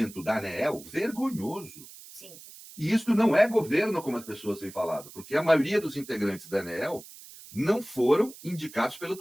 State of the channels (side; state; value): right; noise; hiss, 18 dB below the sound